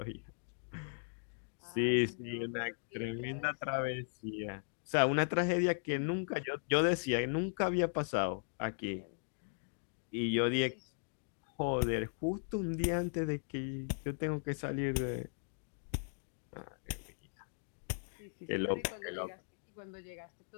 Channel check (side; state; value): right; silent; digital silence